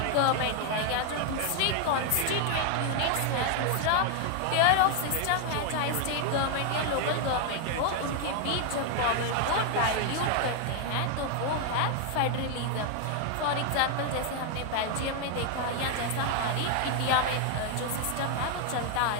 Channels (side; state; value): both; different; correlation 0.00